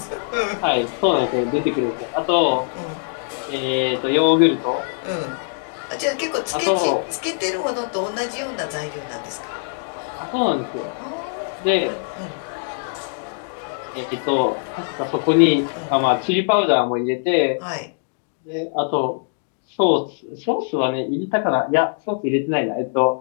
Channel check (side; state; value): right; silent; digital silence